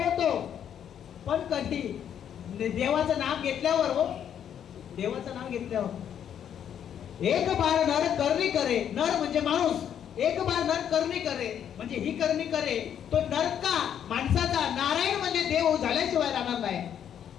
पण कधी? देवाचं नाम घेतल्यावर. हो, देवाचं नाम घेतल्यावर. एक बार नर करणी करे, नर म्हणजे माणूस. एक बार नर करणी करे म्हणजे ही करणी करे, तो नर का माणसाचा, नारायण म्हणजे देव झाल्याशिवाय राहणार नाही.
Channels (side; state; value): right; quieter; 9.2 dB